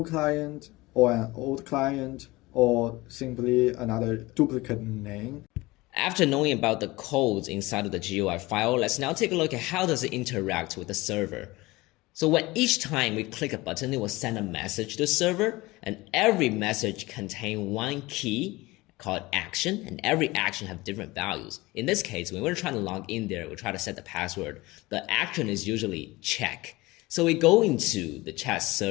client or an old client or simply another duplicate name. After knowing about the codes inside of the GUI file, let's now take a look at how does it interact with the server. So when each time we click a button, it will send a message to the server, and every message contains one key called action, and every action have different values. In this case, when we're trying to log in there, we try to set the password. The action is usually check. So we go into the chat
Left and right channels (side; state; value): right; quieter; 20.9 dB